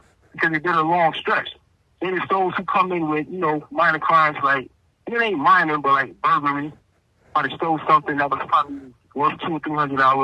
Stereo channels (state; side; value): identical; both; correlation 1.00